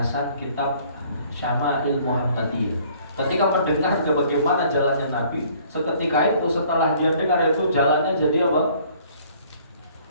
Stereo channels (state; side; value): inverted; both; correlation -0.58